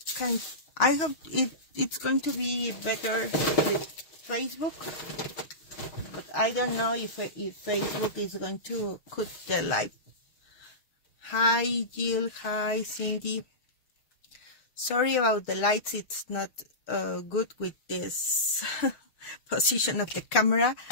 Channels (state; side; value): late; right; 6.5 ms